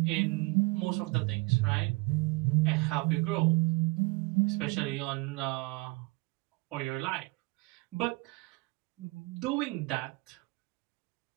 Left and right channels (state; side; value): quieter; left; 25.0 dB